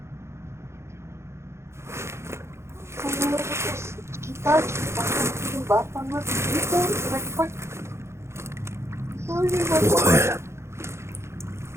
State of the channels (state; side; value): late; left; 0.13 ms